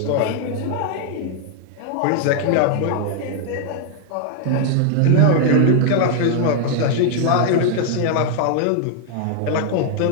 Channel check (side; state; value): both; different; correlation 0.00